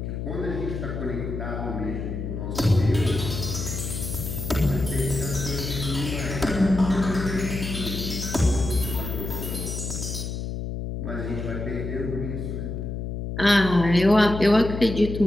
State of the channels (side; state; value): left; noise; hum, 5 dB below the sound